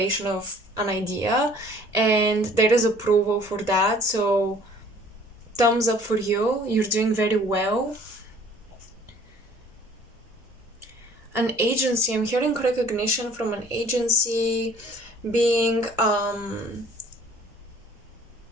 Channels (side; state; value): both; normal; correlation 0.54